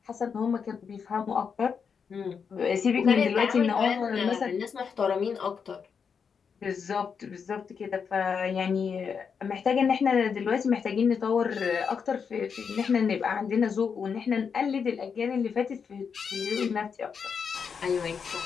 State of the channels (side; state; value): right; quieter; 6.3 dB